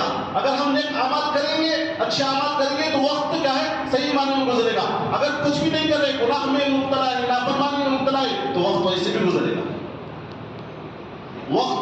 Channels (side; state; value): both; identical; correlation 1.00